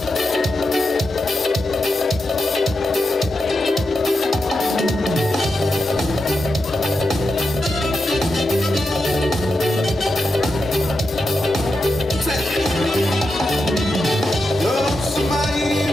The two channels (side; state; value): both; normal; correlation 0.88